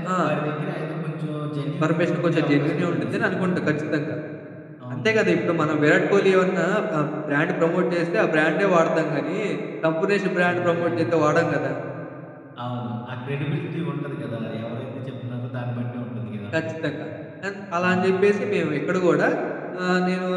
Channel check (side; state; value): both; identical; correlation 1.00